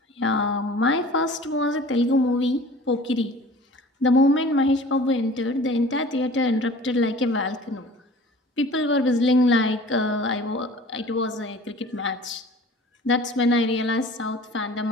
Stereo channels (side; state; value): both; normal; correlation 0.44